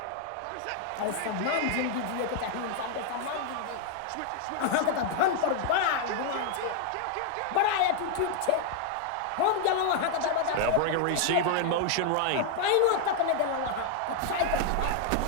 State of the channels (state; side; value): different; both; correlation 0.00